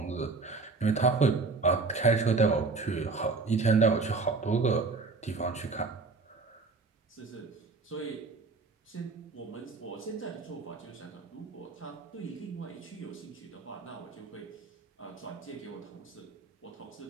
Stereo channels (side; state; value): left; quieter; 4.1 dB